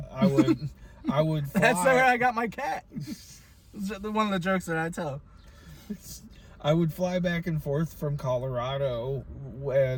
would fly. That's where I got my cat. One of the jokes that I tell. I would fly back and forth from Colorado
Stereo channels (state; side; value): identical; both; correlation 1.00